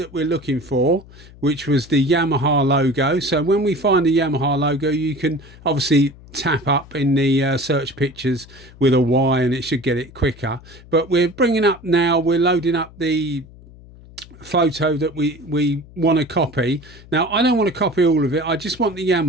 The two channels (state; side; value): noise; left; hum, 21 dB below the sound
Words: we're looking for, which was the Yamaha logo. So when we find the Yamaha logo, you can obviously tap up in the search pictures with a Y and it should get it quicker. But we're bringing up now, we're loading up the photo that we want to copy. Now I don't want to copy all of it, I just want the